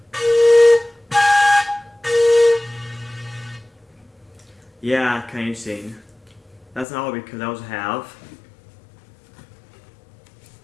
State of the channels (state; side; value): drops out; right; at 6.9 s